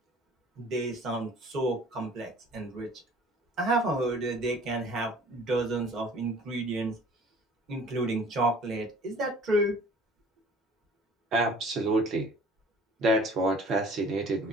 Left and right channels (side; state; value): both; normal; correlation 0.50